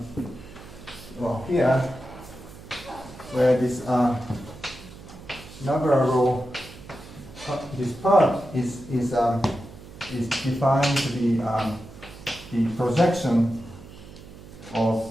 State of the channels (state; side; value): noise; right; hum, 17 dB below the sound